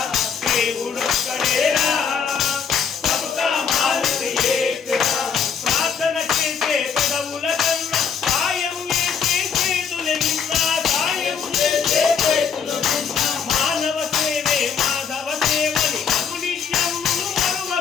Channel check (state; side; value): quieter; right; 7.1 dB